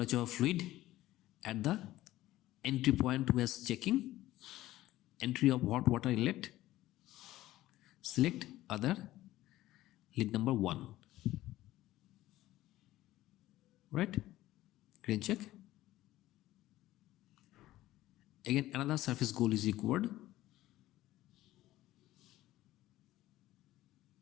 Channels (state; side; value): quieter; right; 15.6 dB